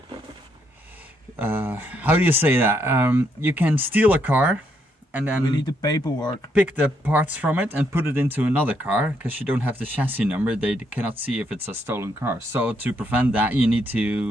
how do you say that? You can steal a car and then we need the paperwork. Pick the parts from it and put it into another car, because you don't have the chassis number. They cannot see if it's a stolen car. So to prevent that, you need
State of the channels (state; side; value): normal; both; correlation 0.75